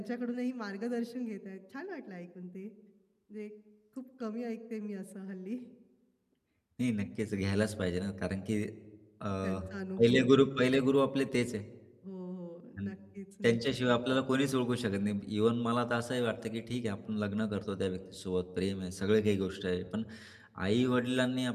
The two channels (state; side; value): identical; both; correlation 1.00